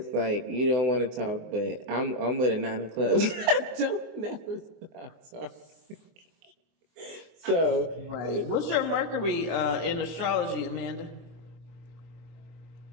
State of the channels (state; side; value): late; left; 24 ms